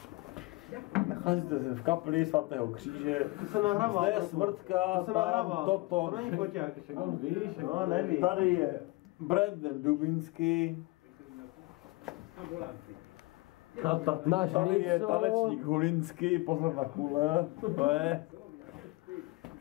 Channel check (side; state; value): right; quieter; 22.5 dB